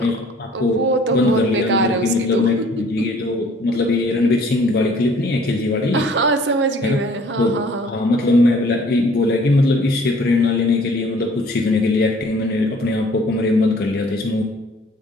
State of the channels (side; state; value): both; normal; correlation 0.55